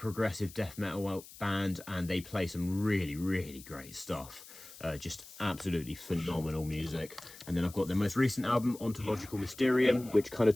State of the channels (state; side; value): noise; left; hiss, 18 dB below the sound